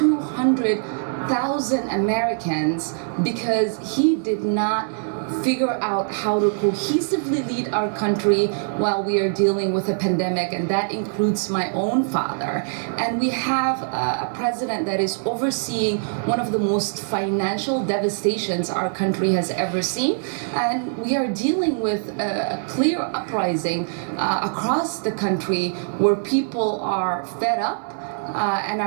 Americans because he did not figure out how to cohesively lead our country while we are dealing with a pandemic, and that includes my own father. And we have a president that is overseeing one of the most financial devastations our country has ever seen, and we are dealing with a clear uprising across the country where people are fed up and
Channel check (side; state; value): left; silent; digital silence